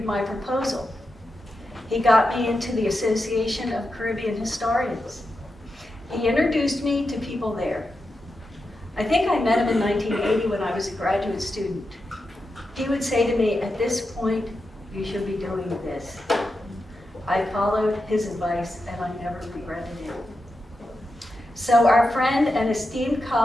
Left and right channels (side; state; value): both; normal; correlation 0.88